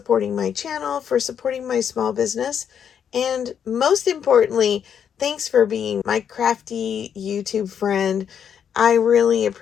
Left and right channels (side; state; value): right; quieter; 8.2 dB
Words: my channel, for supporting my small business, and most importantly, thanks for being my crafty YouTube friend. I really